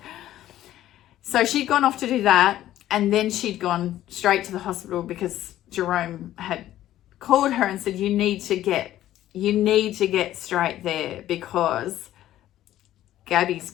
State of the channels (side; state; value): right; quieter; 13.3 dB